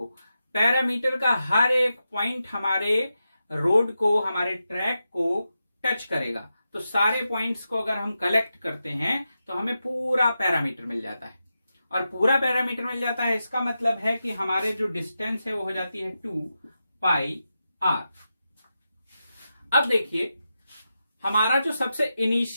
पैरामीटर का हर एक पॉइंट हमारे रोड को, हमारे ट्रैक को टच करेगा। तो सारे पॉइंट्स को अगर हम कलेक्ट करते हैं तो हमें पूरा पैरामीटर मिल जाता है, और पूरा पैरामीटर मिल जाता है इसका मतलब है कि हमारे जो डिस्टेंस है वो हो जाती है 2 पाई आर। अब देखिए हमारा जो सबसे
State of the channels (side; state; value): both; inverted; correlation -0.89